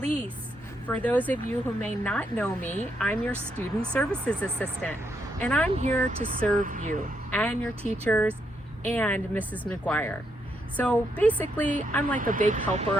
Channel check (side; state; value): both; normal; correlation 0.78